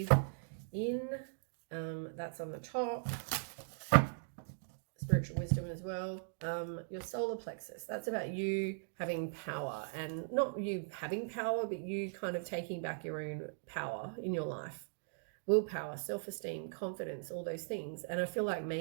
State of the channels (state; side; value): silent; left; digital silence